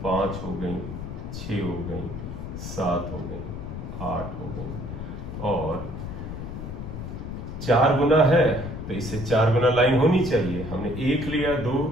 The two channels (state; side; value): noise; left; rumble, 7 dB below the sound